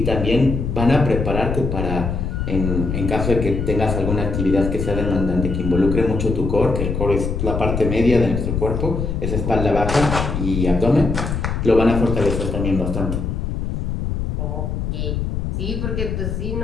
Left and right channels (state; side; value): noise; left; rumble, 2 dB below the sound